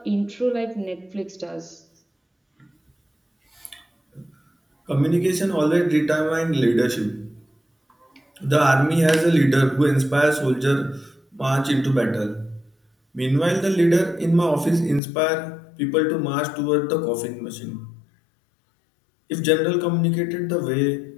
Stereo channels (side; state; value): right; drops out; at 15.0 s